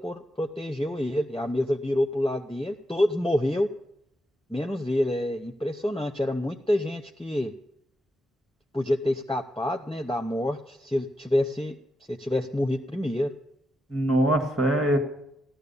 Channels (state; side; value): normal; both; correlation 0.85